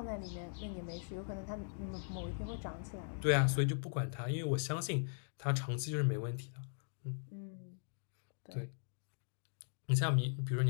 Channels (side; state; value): right; silent; digital silence